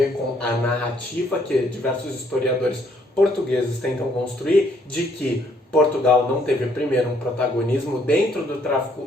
com a narrativa que diversos historiadores portugueses tentam construir de que Portugal não teve primeiro um protagonismo dentro do tráfico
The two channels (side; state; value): both; normal; correlation 0.67